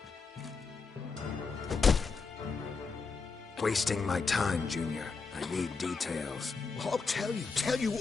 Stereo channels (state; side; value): quieter; right; 4.7 dB